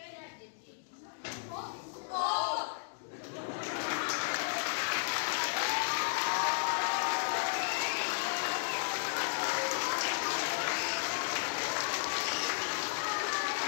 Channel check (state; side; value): silent; right; digital silence